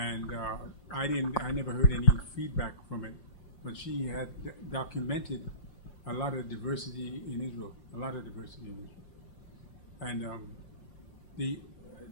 I never heard any feedback from but she had documented a lot of diversity in Israel, And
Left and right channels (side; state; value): right; late; 5.8 ms